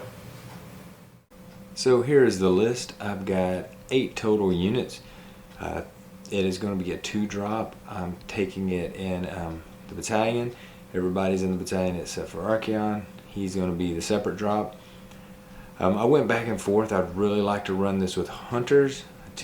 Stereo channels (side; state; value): both; identical; correlation 1.00